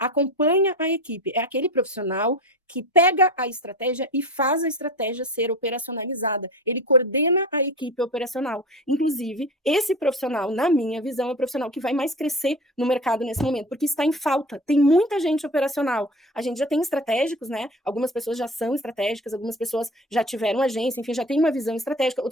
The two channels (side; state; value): both; normal; correlation 0.32